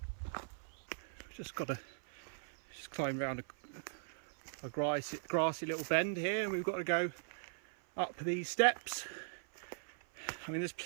Just got to climb around a grassy little bend here, and we've got to go up these steps. I mean, there's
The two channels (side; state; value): left; silent; 51 dB below the other